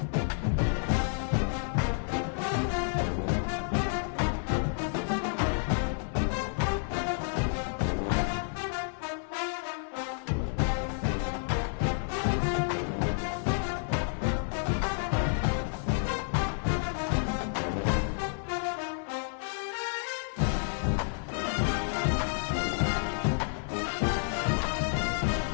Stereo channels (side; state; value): right; silent; 58 dB below the other